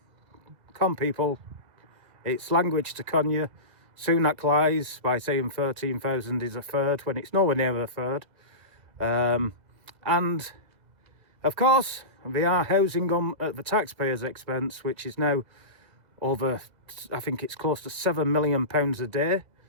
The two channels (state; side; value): late; left; 2.0 ms